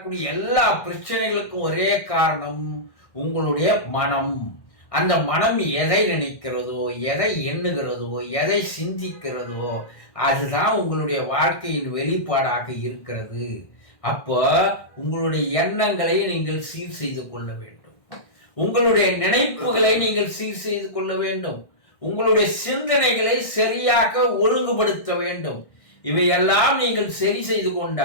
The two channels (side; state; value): right; late; 1.6 ms